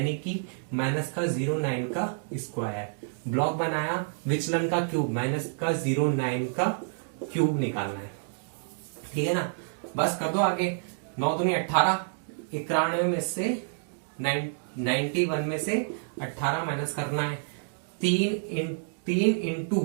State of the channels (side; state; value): left; silent; digital silence